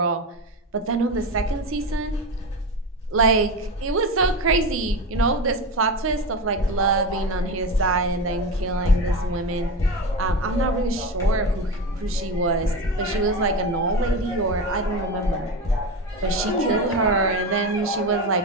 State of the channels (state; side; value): normal; both; correlation 0.21